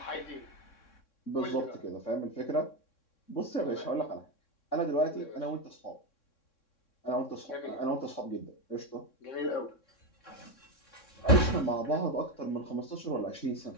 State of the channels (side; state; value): right; late; 3.6 ms